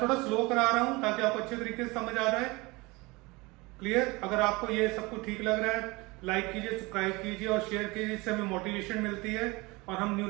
थोड़ा स्लो करा रहा हूं ताकि आपको अच्छे तरीके से समझ आ जाए। क्लियर? अगर आपको ये सब कुछ ठीक लग रहा है, लाइक कीजिए, सब्सक्राइब कीजिए और शेयर कीजिए, इससे हमें मोटिवेशन मिलती है और हम न्यू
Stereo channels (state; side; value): quieter; left; 24.0 dB